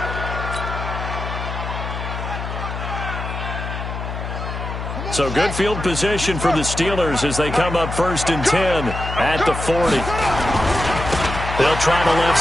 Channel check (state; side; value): noise; left; hum, 6 dB below the sound